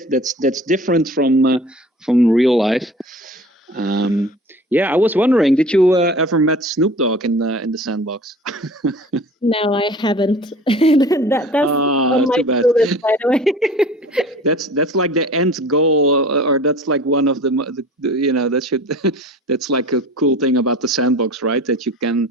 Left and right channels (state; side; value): normal; both; correlation 0.42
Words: different from real life. I was wondering, did you ever met Snoop Dogg in the Sandbox? No, I haven't. That's on my to-do list, by the way. That's like the end goal, or that's like one of the that should that's like a cool thing about the Sandbox, right? That you can,